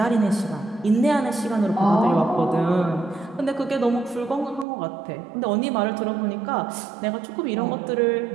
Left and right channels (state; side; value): drops out; left; at 4.7 s